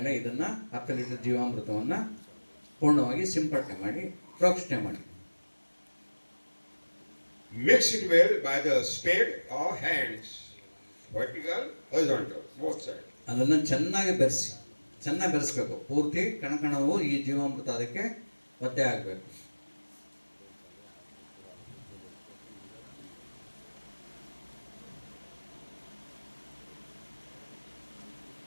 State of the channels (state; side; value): inverted; both; correlation -1.00